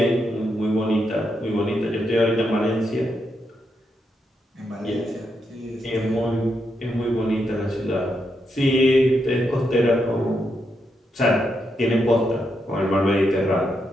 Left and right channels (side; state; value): both; normal; correlation 0.82